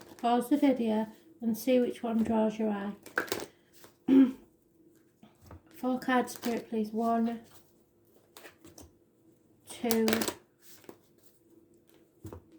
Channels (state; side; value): identical; both; correlation 1.00